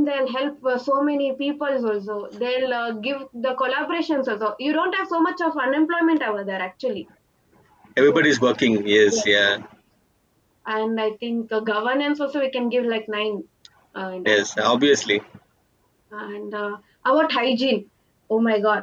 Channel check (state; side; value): identical; both; correlation 1.00